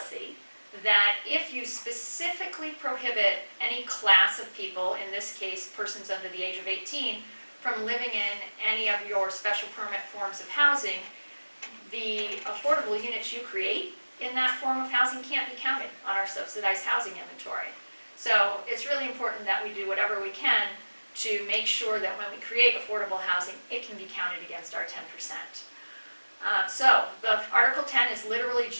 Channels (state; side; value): inverted; both; correlation -1.00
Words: that if you specifically prohibit any class of people, in this case persons under the age of 18, from living in any of your special permit forms of housing, the affordable units you create in that form of housing can't be counted on our subsidized housing inventory. So it's really important that we do whatever we can to make sure that when we create affordable housing, it can be counted against our 10%. So the Article 10 is literally